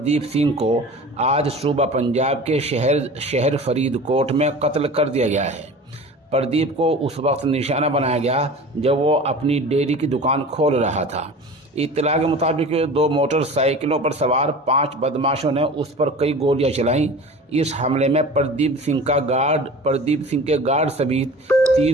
सिंह को आज सूबा पंजाब के शहर फरीदकोट में कत्ल कर दिया गया है। प्रदीप को उस वक्त निशाना बनाया गया जब वो अपनी डेयरी की दुकान खोल रहा था। इत्तला के मुताबिक 2 मोटरसाइकिलों पर सवार 5 बदमाशों ने उस पर कई गोलियां चलाईं। इस हमले में प्रदीप सिंह के गार्ड समेत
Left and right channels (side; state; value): both; normal; correlation 0.38